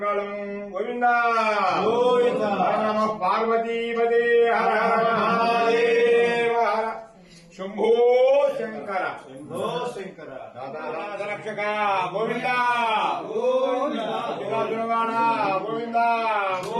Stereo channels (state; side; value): identical; both; correlation 1.00